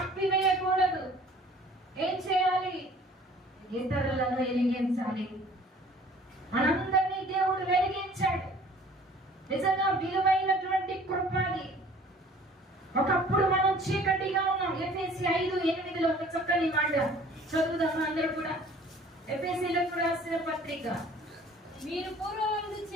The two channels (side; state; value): both; normal; correlation 0.51